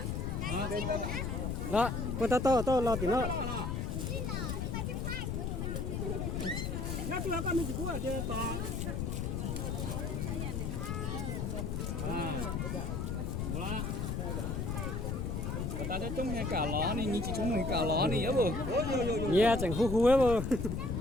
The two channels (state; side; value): noise; left; rumble, 2 dB below the sound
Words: Đó, con tao lo tí nó. Nhá tôi con mình của chơi to. Voilà. Ta thấy trông hay cả ló này, nhìn chỉ trông hay cả ló này á bồ. Yeah, chẳng khu ấy bồ.